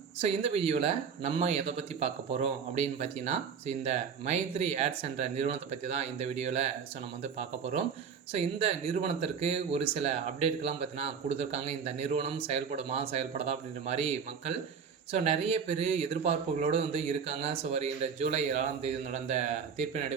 இந்த வீடியோவில் நம்ம எதை பற்றி பார்க்க போகிறோம் அப்படின்னு பார்த்தீங்கன்னா, இந்த மைத்ரி ஆட்ஸ் என்ற நிறுவனத்தை பற்றி தான் இந்த வீடியோவில் நம்ம வந்து பார்க்க போகிறோம். இந்த நிறுவனத்திற்கு ஒரு சில அப்டேட்கள்லாம் பார்த்தீங்கன்னா கொடுத்துருக்காங்க. இந்த நிறுவனம் செயல்படுமா செயல்படாதா அப்படின்ற மாதிரி மக்கள் நிறைய பேர் எதிர்பார்ப்புகளோடு வந்து இருக்காங்க. வருகின்ற ஜூலை 7ஆம் தேதி நடந்த தீர்ப்பின்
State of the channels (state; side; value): quieter; left; 6.6 dB